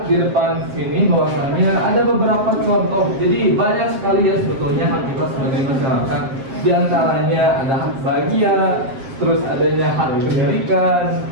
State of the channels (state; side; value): late; left; 7.5 ms